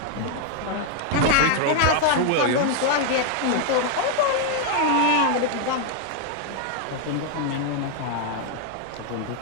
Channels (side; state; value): both; different; correlation 0.00